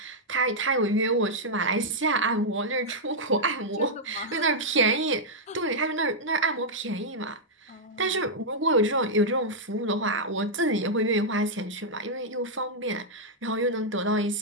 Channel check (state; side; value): normal; both; correlation -0.06